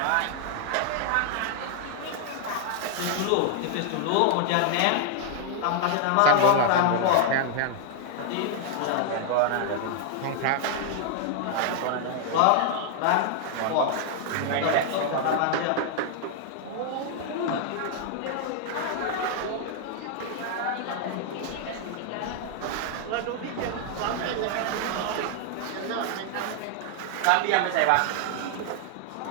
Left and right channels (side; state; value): both; different; correlation 0.00